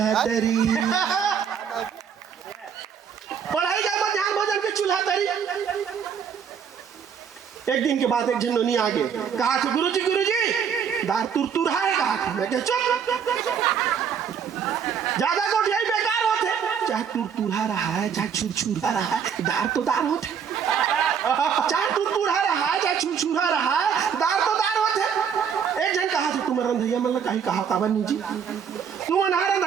तरी पढ़ाई गए मध्याह्न भोजन के चूल्हा तरी एक दिन के बाद एक झंडोनी आ गए कहा थे गुरुजी दार तुर है कहा थे मैं चुप ज्यादा गोटियाई बेकार होते चाहे तुर रहा है चाहे छुर रहा है दार तो दार होते चाहे तुरतुरा रहा चाहे छुरछुरा रहा, दार तो दार होते। एक जन कहा थे तुम रंधैया मन कहीं कहा काबर नहीं जी, तुम अनहा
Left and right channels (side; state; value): left; quieter; 7.4 dB